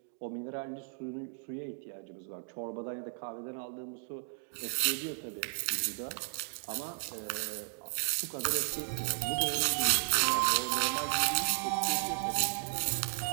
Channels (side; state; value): left; silent; digital silence